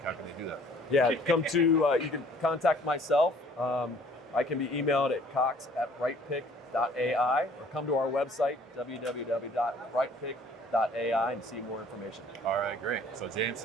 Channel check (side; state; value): both; normal; correlation 0.56